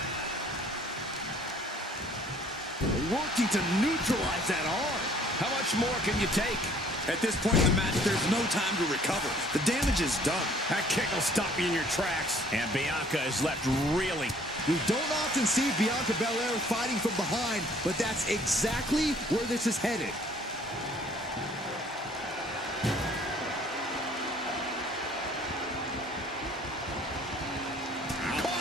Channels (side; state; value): both; normal; correlation 0.57